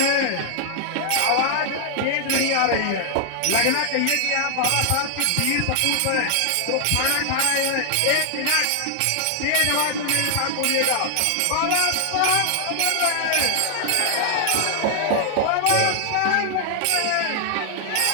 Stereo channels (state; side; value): different; both; correlation 0.00